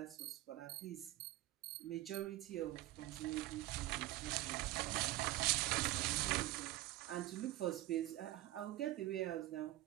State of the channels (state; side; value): quieter; left; 16.7 dB